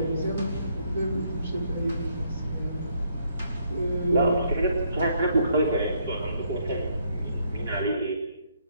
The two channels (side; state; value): both; inverted; correlation -0.71